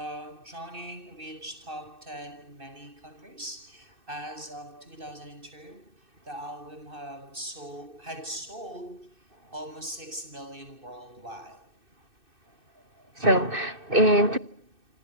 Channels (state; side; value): late; left; 2.6 ms